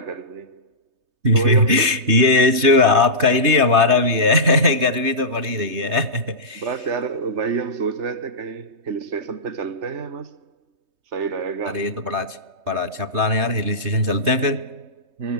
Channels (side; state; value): left; late; 3.2 ms